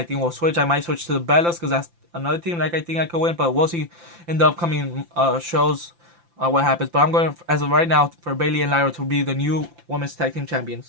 think will switch. I might switch to the Bellas because that's another team like I think I could win. But we'll see in the upcoming shows what happens. But I'm going as of right now for Bayley and Lyra to be the new women's tag team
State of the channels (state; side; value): late; left; 5.8 ms